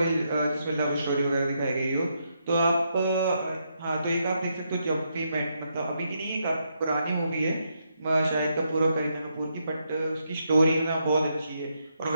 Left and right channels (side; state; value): both; inverted; correlation -0.79